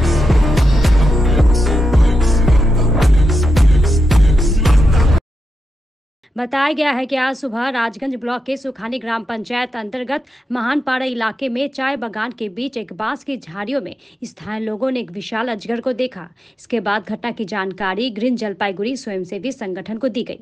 बताया गया है कि आज सुबह राजगंज ब्लॉक के सुखानी ग्राम पंचायत अंतर्गत महानपाड़ा इलाके में चाय बागान के बीच एक बांस की झाड़ियों में स्थानीय लोगों ने एक विशाल अजगर को देखा। इसके बाद घटना की जानकारी ग्रीन जलपाईगुड़ी स्वयंसेवी संगठन को दी गई।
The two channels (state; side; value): normal; both; correlation 0.86